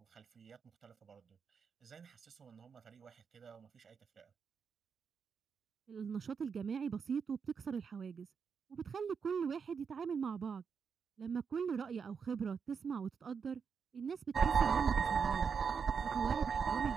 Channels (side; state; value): left; quieter; 6.2 dB